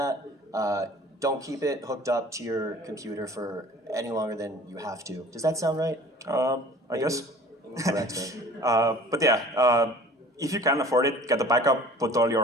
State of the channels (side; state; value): both; normal; correlation 0.46